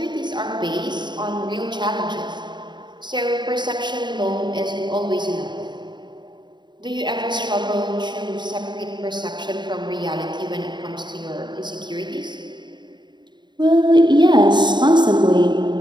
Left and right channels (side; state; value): left; late; 0.22 ms